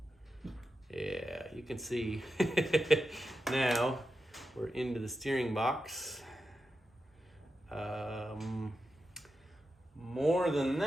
Yeah, you can see now we're into the steering box. More than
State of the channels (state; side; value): normal; both; correlation 0.89